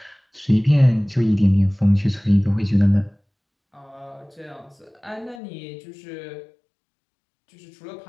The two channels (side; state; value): right; drops out; at 5.4 s